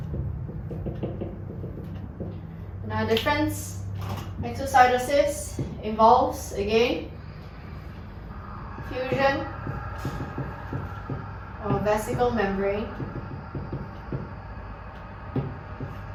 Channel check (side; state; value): both; identical; correlation 1.00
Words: Now difference, exocytosis involves, again, fusion of vesicle membrane